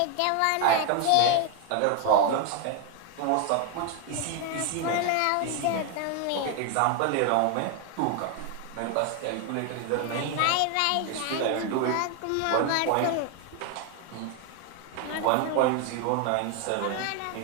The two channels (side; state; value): both; different; correlation 0.01